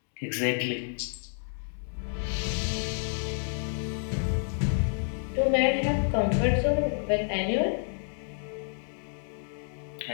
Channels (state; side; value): silent; right; digital silence